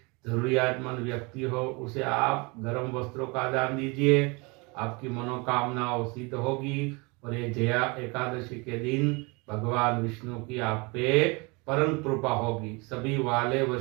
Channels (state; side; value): quieter; left; 28.3 dB